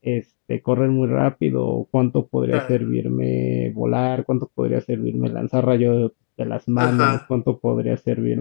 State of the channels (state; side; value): silent; right; digital silence